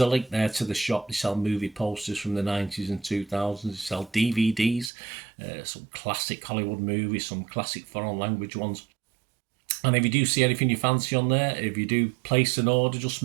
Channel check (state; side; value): drops out; left; at 4.9 s